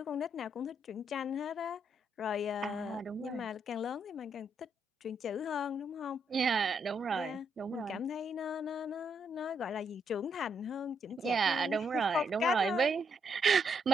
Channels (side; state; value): both; normal; correlation 0.76